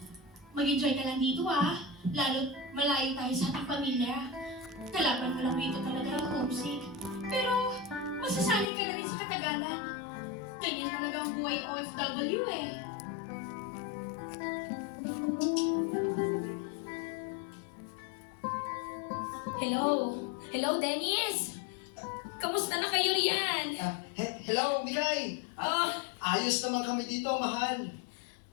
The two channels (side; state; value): right; drops out; at 8.7 s